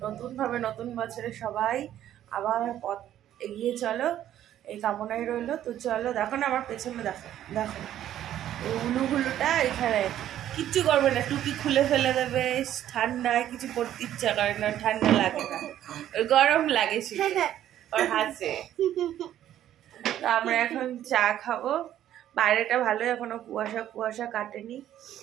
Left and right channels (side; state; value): left; quieter; 11.7 dB